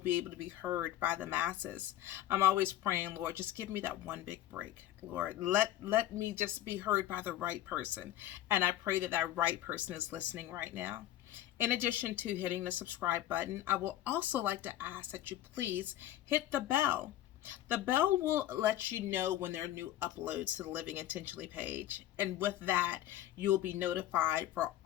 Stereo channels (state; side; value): quieter; right; 13.1 dB